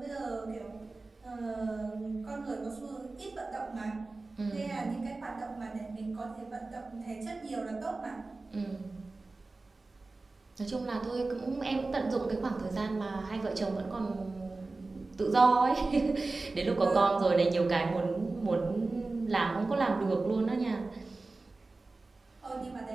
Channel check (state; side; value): quieter; left; 3.4 dB